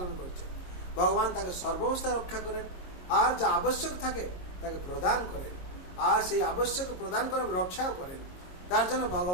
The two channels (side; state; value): right; late; 22 ms